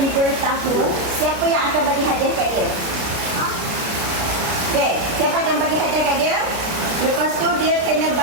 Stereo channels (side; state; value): left; late; 33 ms